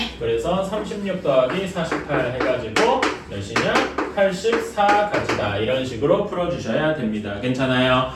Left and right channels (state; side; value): identical; both; correlation 1.00